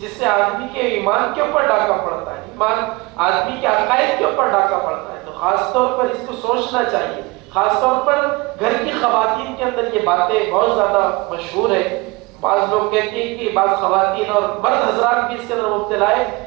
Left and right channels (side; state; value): left; quieter; 24.6 dB